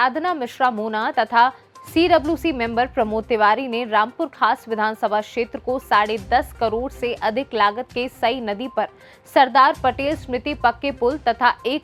मिश्रा मोना तथा सीडब्ल्यूसी मेंबर प्रमोद तिवारी ने रामपुर खास विधानसभा क्षेत्र को 10.5 करोड़ से अधिक लागत के सई नदी पर सरदार पटेल स्मृति पक्के पुल तथा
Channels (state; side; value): identical; both; correlation 1.00